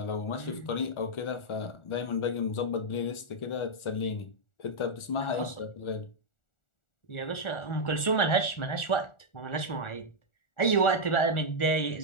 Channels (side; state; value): right; late; 1.4 ms